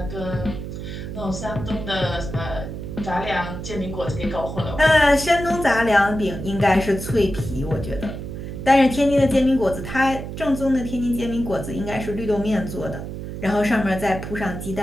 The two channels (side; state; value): right; noise; hum, 8 dB below the sound